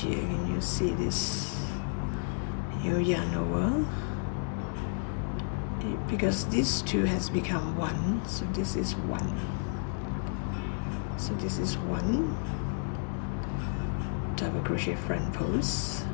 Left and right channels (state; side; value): silent; right; digital silence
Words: here. Can you see this? You yarn over. Because this 2 has become 1, so this is 1. So this is 1 double crochet front post.